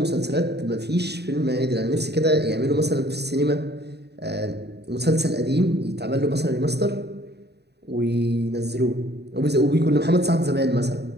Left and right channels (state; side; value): late; left; 0.48 ms